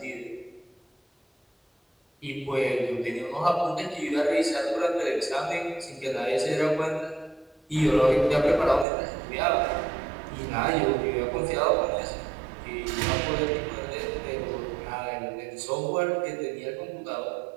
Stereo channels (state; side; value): drops out; left; at 8.8 s